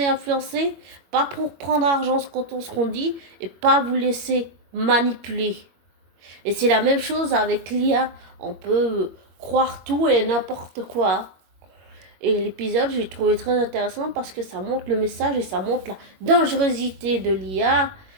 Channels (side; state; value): left; late; 21 ms